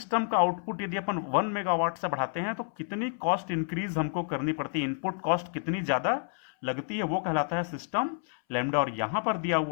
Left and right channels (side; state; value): right; silent; 58 dB below the other